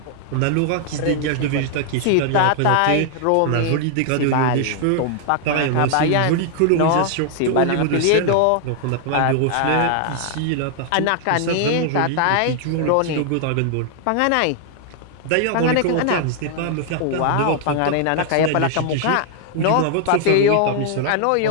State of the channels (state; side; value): different; both; correlation 0.00